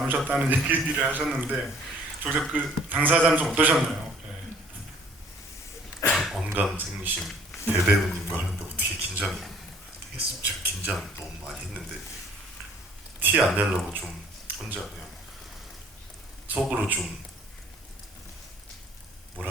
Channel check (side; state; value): both; normal; correlation 0.57